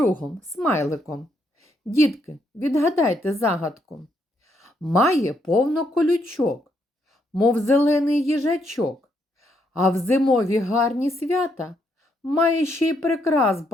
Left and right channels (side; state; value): both; normal; correlation 0.75